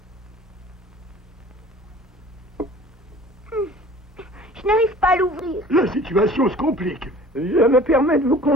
Je n'arrive pas à l'ouvrir. La situation se complique. Je me permets de vous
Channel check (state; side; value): normal; both; correlation 0.47